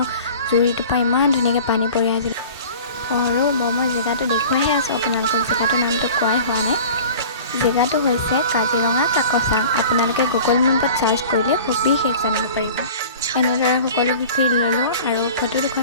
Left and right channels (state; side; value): inverted; both; correlation -0.41